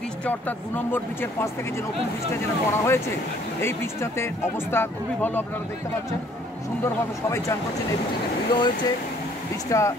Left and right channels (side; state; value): both; normal; correlation 0.60